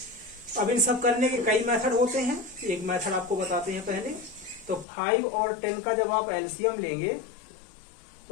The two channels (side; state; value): right; drops out; at 4.9 s